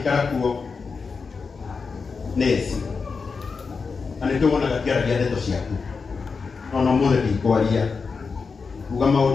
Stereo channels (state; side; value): quieter; right; 5.0 dB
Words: kuo nesi anitwona gakiaragia ndeto ciaku no muthe ndikwaria uga